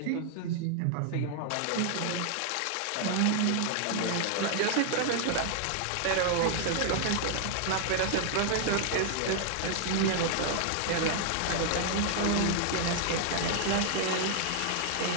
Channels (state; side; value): different; both; correlation 0.00